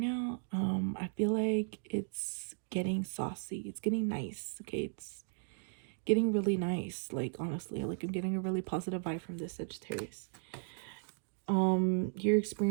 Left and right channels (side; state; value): left; silent; digital silence